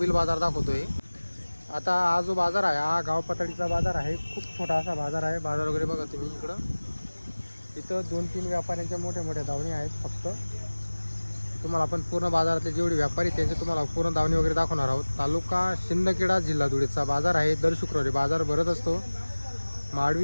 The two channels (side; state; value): both; inverted; correlation -1.00